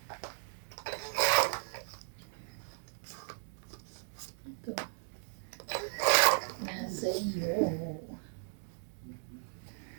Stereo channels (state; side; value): silent; left; digital silence